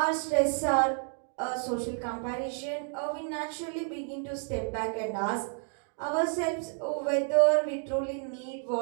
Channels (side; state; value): left; silent; 56 dB below the other